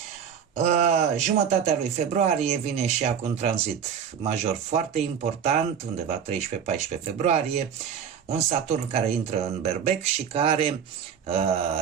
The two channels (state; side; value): quieter; left; 7.8 dB